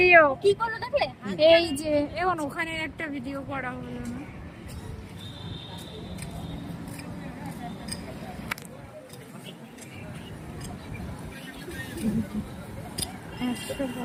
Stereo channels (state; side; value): identical; both; correlation 1.00